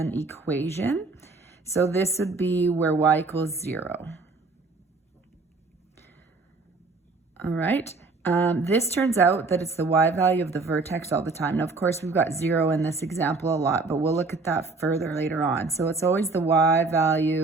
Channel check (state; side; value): quieter; left; 3.8 dB